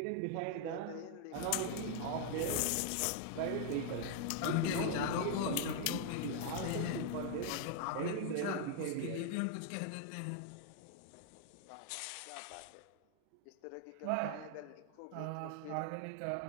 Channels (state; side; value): different; both; correlation 0.00